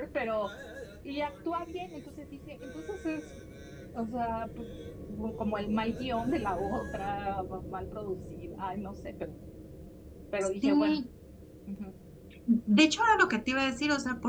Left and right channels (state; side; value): identical; both; correlation 1.00